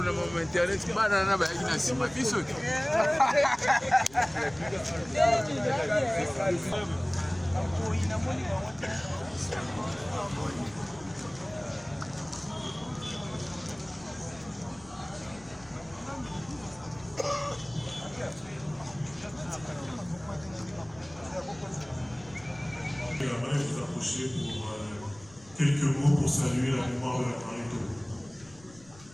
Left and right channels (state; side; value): noise; left; rumble, 23 dB below the sound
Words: na mama internet bana na bayaki na nsima biso te J'aimerais vous approcher pour quelques mots pour saluer la mémoire de la Marito.